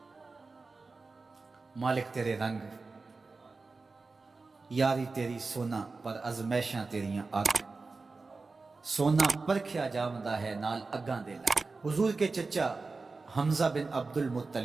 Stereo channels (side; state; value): left; quieter; 3.9 dB